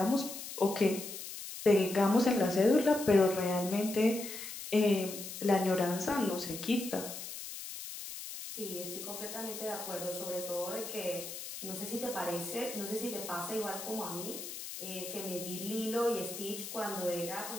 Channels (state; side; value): noise; left; hiss, 9 dB below the sound